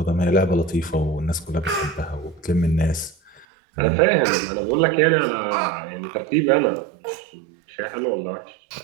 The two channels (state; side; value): drops out; left; at 3.5 s